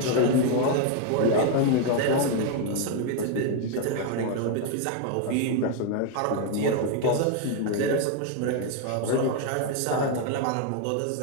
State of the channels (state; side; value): different; both; correlation 0.01